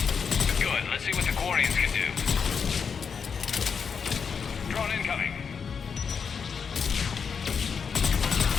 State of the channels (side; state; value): right; quieter; 6.2 dB